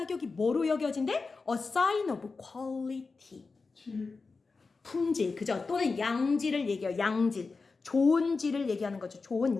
뭐로 여겨진대? A sign of quality 품질 그죠? 또는 양질을 얘기해요. 양질 좋은 질을 얘기하는 거죠.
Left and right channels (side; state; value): right; quieter; 4.2 dB